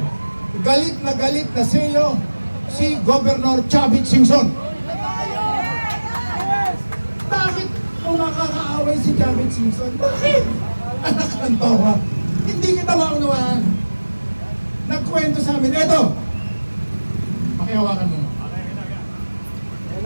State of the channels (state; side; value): inverted; both; correlation -1.00